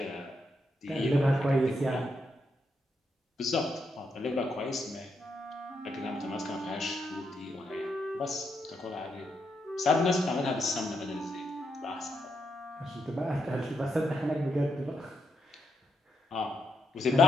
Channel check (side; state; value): both; normal; correlation 0.81